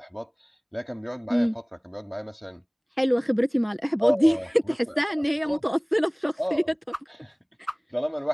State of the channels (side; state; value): both; identical; correlation 1.00